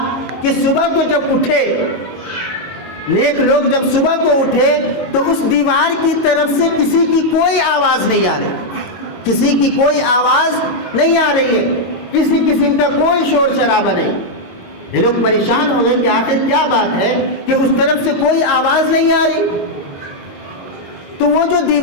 کہ صبح کو جب اٹھے، نیک لوگ جب صبح کو اٹھے تو اس دیوار کی طرف سے کسی کی کوئی آواز نہیں آ رہی، کسی کی کوئی آواز نہیں آ رہی ہے، کسی قسم کا کوئی شور شرابہ نہیں۔ یہ لوگ پریشان ہو گئے کہ آخر کیا بات ہے کہ اس طرف سے کوئی آواز نہیں آ رہی۔ تو وہ جو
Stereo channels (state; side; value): late; right; 22 ms